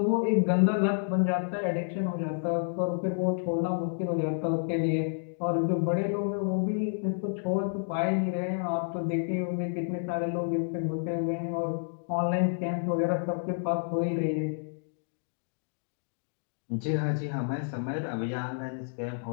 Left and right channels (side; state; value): right; silent; digital silence